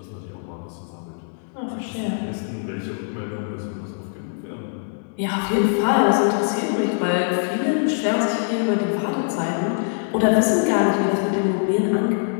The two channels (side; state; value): right; silent; digital silence